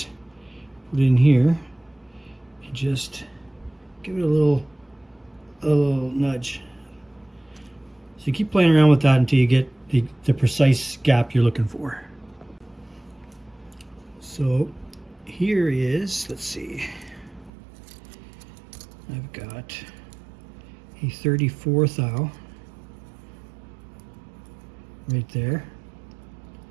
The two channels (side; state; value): left; drops out; at 17.5 s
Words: put it in here, and just give it a little nudge. So you keep playing around with that until you get the precise gap you're looking for. So here is, let's see, I've got a 34 thou right there.